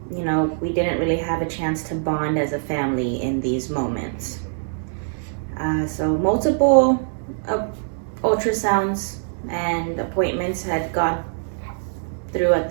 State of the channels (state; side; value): silent; left; digital silence